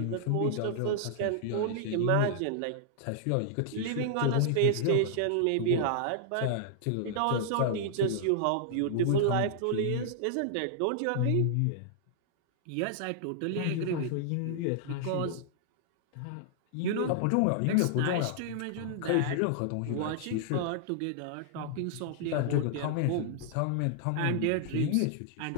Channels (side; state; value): both; different; correlation -0.01